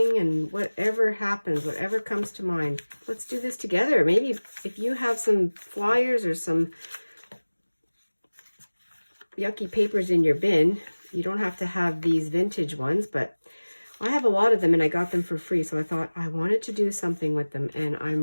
and whatever happens, whatever comes to mind. Let's do this together. Maybe if you have some flyers or some yucky papers in your bin, you don't have to have these vintage ones, but I have a lot of them and I got them for free, so I thought I wanted to do something with them, and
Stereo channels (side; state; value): both; inverted; correlation -1.00